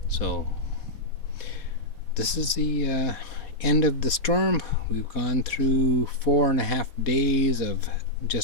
So this is the end of the storm. We've gone through 4.5 days of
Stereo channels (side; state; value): right; late; 4.1 ms